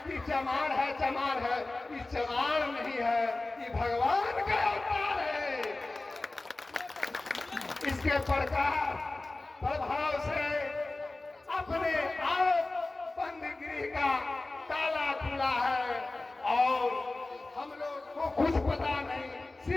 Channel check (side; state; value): right; quieter; 3.1 dB